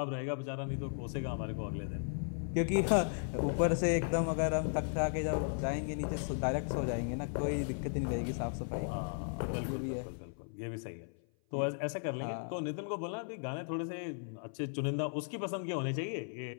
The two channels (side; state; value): right; silent; 54 dB below the other